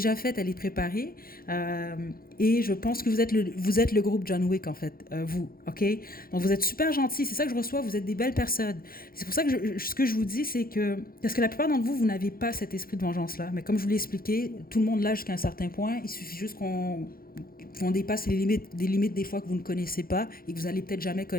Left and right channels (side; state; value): right; late; 0.42 ms